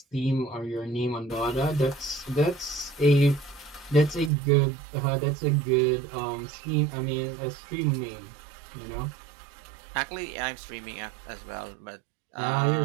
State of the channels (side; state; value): left; drops out; at 4.3 s